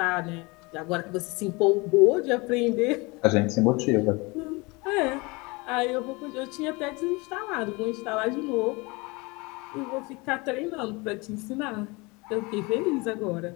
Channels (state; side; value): quieter; right; 26.0 dB